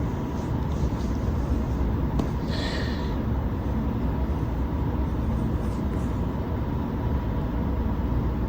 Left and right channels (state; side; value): identical; both; correlation 1.00